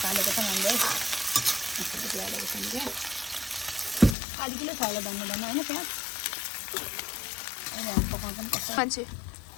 हालेको छ हामीले यति हालेको छ क्या आधी किलो छ होला धन्नु धन्नु होइन प्याज अहिले हामी पकाउँछ नि कस्तो मान्छे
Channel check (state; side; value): drops out; right; at 4.2 s